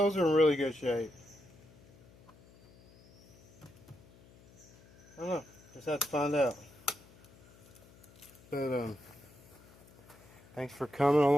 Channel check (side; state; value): left; noise; hum, 25 dB below the sound